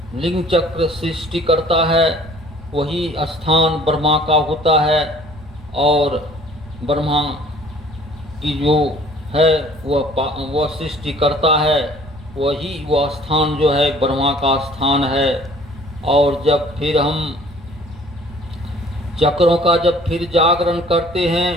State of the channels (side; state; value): right; noise; rumble, 19 dB below the sound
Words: लिंग चक्र सृष्टि करता है, वही स्थान ब्रह्मा का होता है और ब्रह्मा की जो है वह सृष्टि करता है, वही वह स्थान जो है ब्रह्मा का स्थान है। और जब फिर हम चक्रों का जब फिर जागरण करते हैं